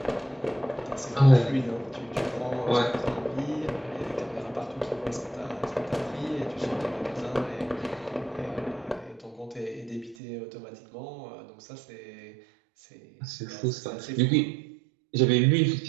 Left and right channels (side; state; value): left; drops out; at 10.2 s